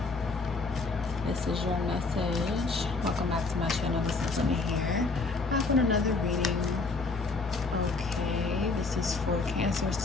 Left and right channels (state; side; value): quieter; right; 3.9 dB